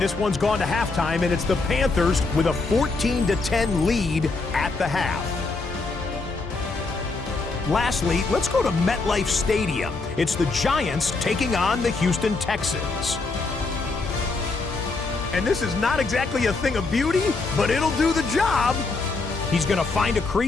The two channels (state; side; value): quieter; right; 3.8 dB